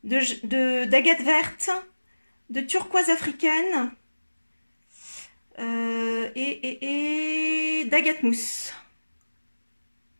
d'agate verte, de turquoise africaine et d'agate mousse.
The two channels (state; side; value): inverted; both; correlation -1.00